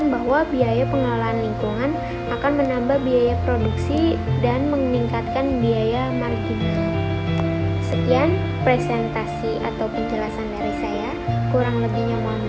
bahwa biaya pengelolaan lingkungan akan menambah biaya produksi dan meningkatkan biaya marginal. Sekian presentasi atau penjelasan dari saya. Kurang lebihnya mohon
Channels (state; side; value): identical; both; correlation 1.00